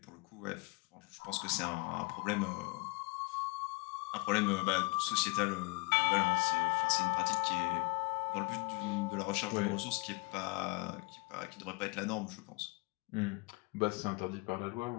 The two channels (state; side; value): quieter; right; 26.5 dB